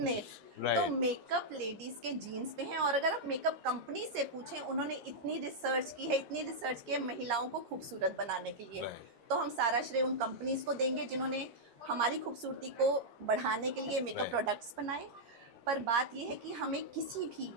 Right. तो मेकअप लेडीज के जीन्स में है. और अगर आप मेकअप कंपनी से पूछें, उन्होंने इतनी रिसर्च की है, इतनी रिसर्च की है महिलाओं को खूबसूरत बनाने के लिए. Right. तो हम सारा श्रेय उन कंपनीज को देंगे जिन्होंने हमारी खूबसूरती को बढ़ाने के लिए मेकअप Right. प्रोडक्ट्स बनाए. पर बात यह है कि हमें किसी भी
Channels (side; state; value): left; late; 13 ms